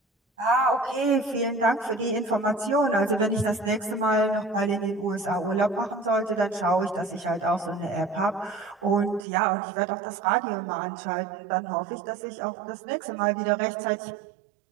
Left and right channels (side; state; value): left; drops out; at 9.2 s